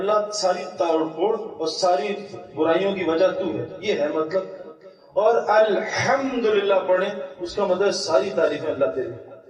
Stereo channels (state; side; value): identical; both; correlation 1.00